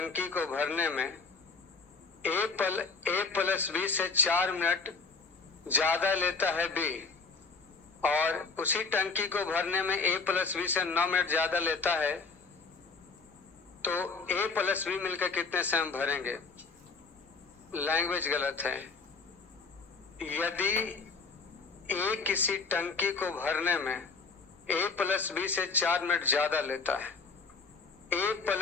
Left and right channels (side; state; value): right; quieter; 4.6 dB